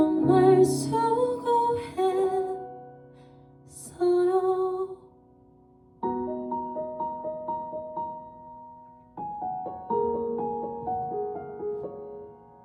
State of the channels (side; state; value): both; identical; correlation 1.00